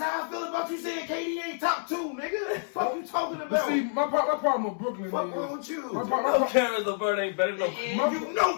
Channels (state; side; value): silent; right; 59 dB below the other